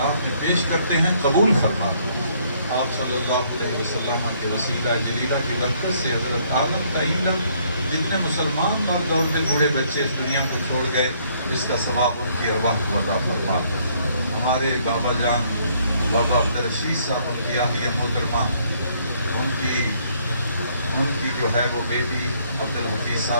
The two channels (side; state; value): both; inverted; correlation -0.66